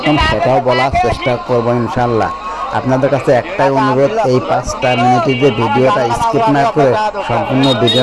সেটাও বলার চেষ্টা করবো ইনশাল্লাহ। আপনাদের কাছে একটাই অনুরোধ, এই 5টা মিনিটের যে ভিডিওটা স্কিপ না করে সম্পূর্ণ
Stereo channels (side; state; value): both; identical; correlation 1.00